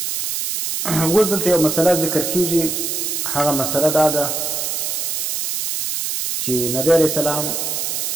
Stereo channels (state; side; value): noise; right; hiss, 2 dB below the sound